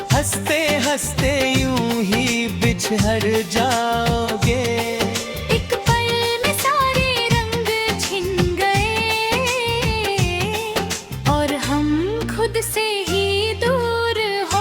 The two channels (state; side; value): identical; both; correlation 1.00